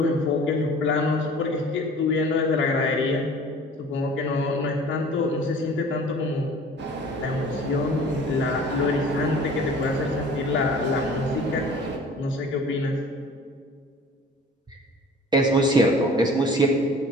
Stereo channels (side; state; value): both; normal; correlation 0.46